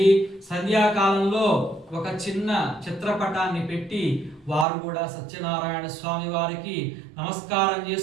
సంధ్యాకాలంలో ఒక చిన్న చిత్రపటాన్ని పెట్టి వారు కూడా సత్యనారాయణ స్వామి వారికి నమస్కారం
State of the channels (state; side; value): drops out; left; at 4.7 s